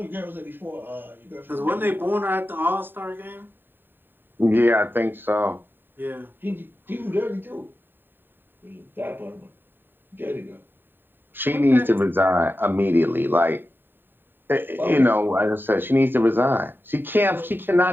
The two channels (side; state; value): left; late; 0.095 ms